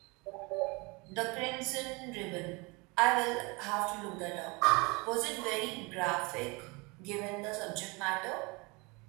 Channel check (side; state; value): left; quieter; 27.4 dB